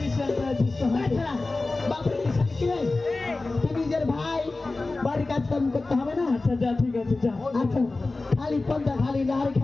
আছিস তো তাছাড়া বাপের কিষান কি রে? তুই নিজের ভাই বাড়ির কাজ কাম করতে হবে না আচ্ছা যা ঠিক আছে যা আচ্ছা খালি পন্থা খালি লাড়ি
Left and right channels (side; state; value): right; quieter; 3.4 dB